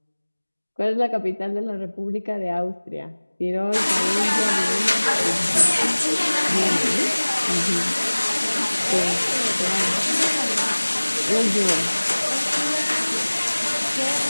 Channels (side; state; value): both; inverted; correlation -1.00